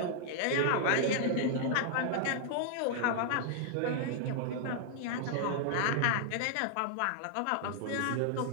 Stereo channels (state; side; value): different; both; correlation -0.01